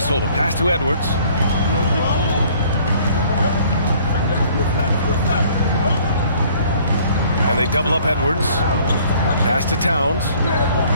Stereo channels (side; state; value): both; inverted; correlation -0.56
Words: the pass to Edwards. And they double up Edwards. Pass to Towns.